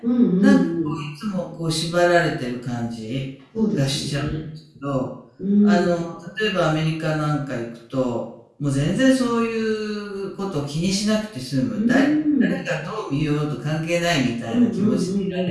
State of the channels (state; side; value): identical; both; correlation 1.00